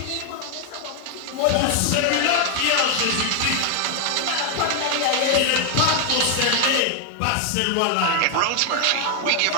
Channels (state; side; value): different; both; correlation 0.01